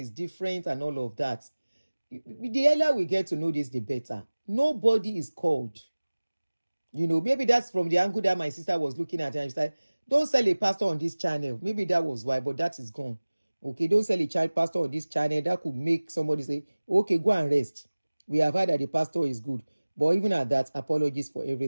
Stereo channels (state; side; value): inverted; both; correlation -1.00